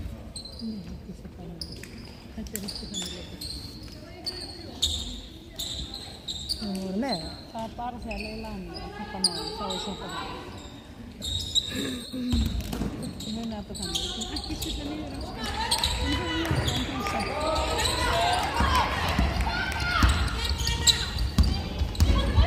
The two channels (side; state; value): both; identical; correlation 1.00